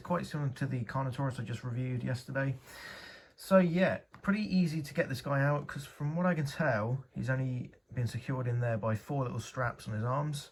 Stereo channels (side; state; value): both; identical; correlation 1.00